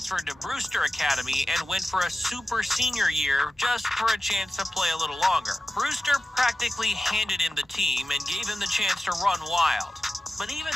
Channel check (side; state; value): both; normal; correlation 0.95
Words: to Brewster Academy and went for a super senior year just for a chance to play a little longer. Brewster practically handed him the team and gave him the chance to run wild. But even